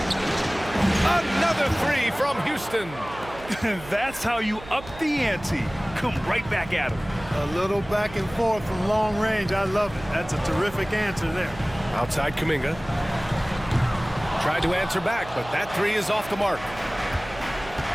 Another 3 from Houston. That's how you up the ante. Come right back at him. A little back and forth from long range. I love it. That's a terrific answer there. Outside Kuminga. Tried to answer back, but that 3 is off the mark.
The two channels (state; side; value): noise; right; hum, 16 dB below the sound